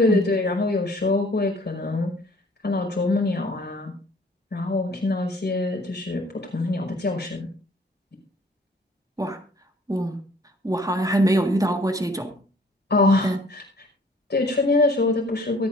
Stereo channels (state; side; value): normal; both; correlation 0.55